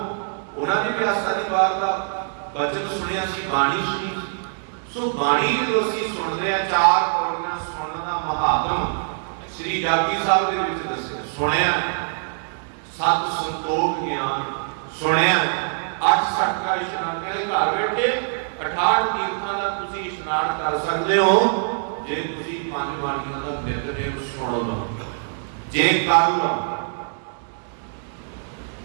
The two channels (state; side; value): silent; left; digital silence